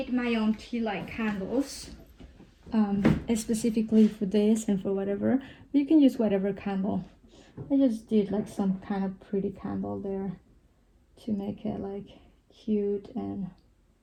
my own tea light candles, specifically for this and for whatever. You can use whatever candle. I just did like some kind of pretty candle there to make it like cute and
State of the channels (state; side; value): identical; both; correlation 1.00